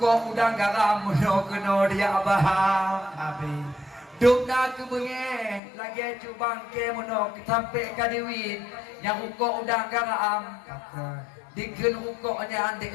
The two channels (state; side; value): drops out; right; at 5.6 s